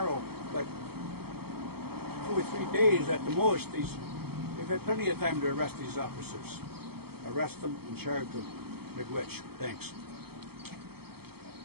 but 2 or 3 days at the most. They've had plenty of time to arrest these officers. Arrest them and charge them. Miigwech. Thanks.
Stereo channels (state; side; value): late; left; 0.96 ms